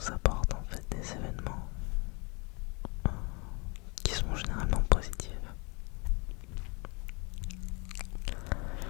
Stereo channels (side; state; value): right; quieter; 30.0 dB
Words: apporte en fait des événements qui sont généralement positifs.